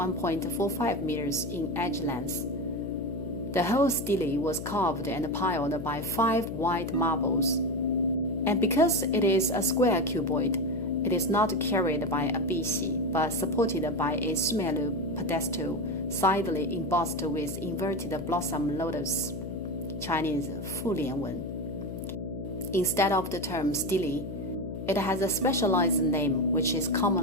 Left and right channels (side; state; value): left; noise; hum, 8 dB below the sound